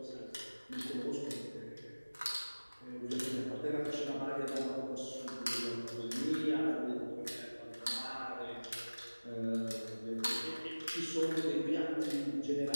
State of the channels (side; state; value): both; inverted; correlation -1.00